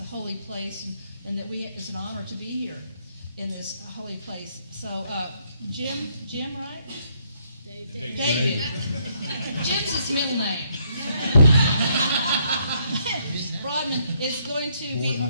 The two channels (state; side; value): inverted; both; correlation -0.71